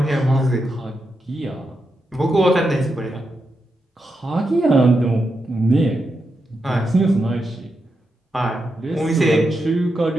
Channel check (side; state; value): both; normal; correlation 0.86